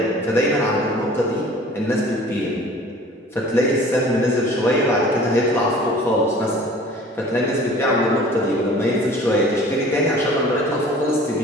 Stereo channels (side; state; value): both; normal; correlation 0.47